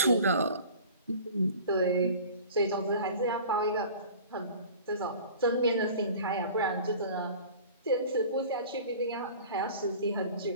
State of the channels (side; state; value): both; inverted; correlation -0.42